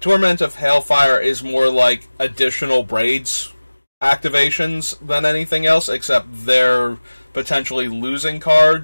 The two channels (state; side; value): inverted; both; correlation -1.00